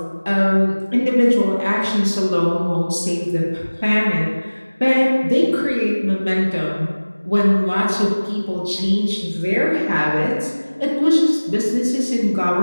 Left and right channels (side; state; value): both; inverted; correlation -1.00